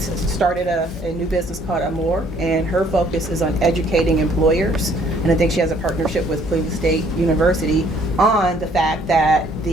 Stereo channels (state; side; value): normal; both; correlation 0.62